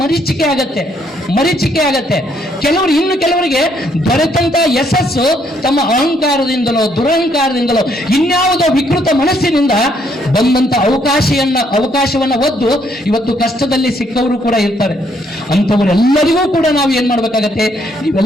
ಮರೀಚಿಕೆ ಆಗತ್ತೆ. ಕೆಲವರಿಗೆ ದೊರೆತಂತ ಯಶಸ್ಸು ತಮ್ಮ ಅಹಂಕಾರದಿಂದಲೋ ದುರಹಂಕಾರದಿಂದಲೋ ಇನ್ಯಾವುದೋ ವಿಕೃತ ಮನಸ್ಸಿನಿಂದ ಬಂದಂತ ಅವಕಾಶವನ್ನ ಒದ್ದು ಇವತ್ತು ಕಷ್ಟದಲ್ಲಿ ಸಿಕ್ಕವರು ಕೂಡ ಇರ್ತಾರೆ. ಅಂಥವರೆಲ್ಲರಿಗೂ ಕೂಡ ನಾವು ಏನ್ ಮಾಡ್ಬೇಕಾಗತ್ತೆ,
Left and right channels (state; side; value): normal; both; correlation 0.70